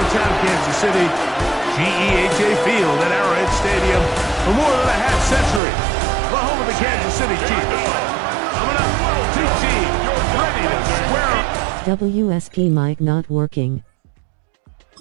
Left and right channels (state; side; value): drops out; left; at 5.6 s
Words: Kansas City. GEHA Field at Arrowhead Stadium for more than a half century. The home of the Kansas City Chiefs. Coming up, two teams ready to square up. WSP mic not working.